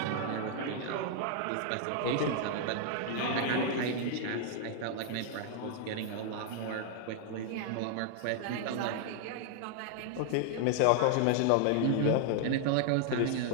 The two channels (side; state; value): both; different; correlation 0.00